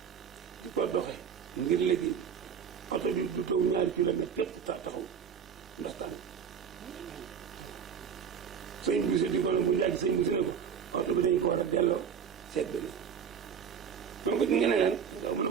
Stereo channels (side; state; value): left; quieter; 7.3 dB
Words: di ko doxe ngir liggéey bi oto bi du taw 2 kilomètres képp taxaw ndax tàng waaw sëñ bu si di ko ne bu njàgg sëñ bu si ne ko oto bi dañ ko war a delloo seet beneen moom ko nga ne leen mu ne